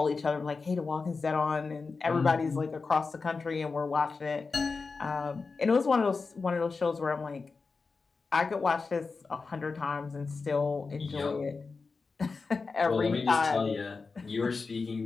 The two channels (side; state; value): right; quieter; 4.4 dB